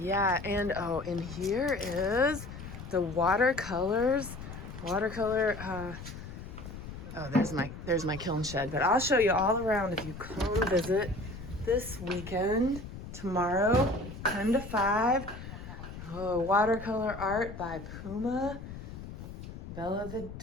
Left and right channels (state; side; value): noise; left; rumble, 11 dB below the sound